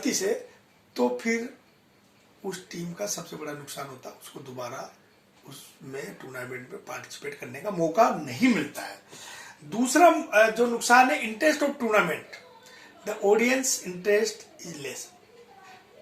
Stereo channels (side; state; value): both; identical; correlation 1.00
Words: से, तो फिर उस टीम का सबसे बड़ा नुकसान होता है, उसको दोबारा उसमें टूर्नामेंट में पार्टिसिपेट करने का मौका नहीं मिलता है। दूसरा जो नुकसान है, interest of tournament, the audience interest is less.